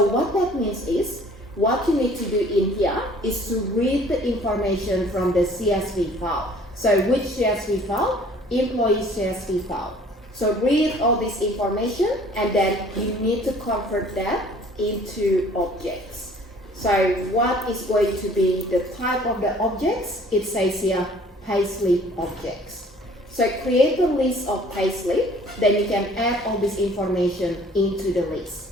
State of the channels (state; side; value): normal; both; correlation 0.53